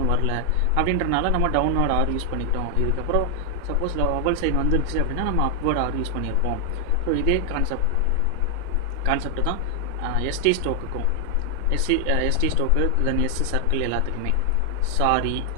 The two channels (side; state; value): both; different; correlation 0.00